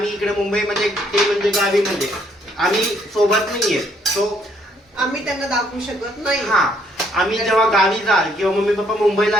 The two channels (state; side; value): normal; both; correlation 0.68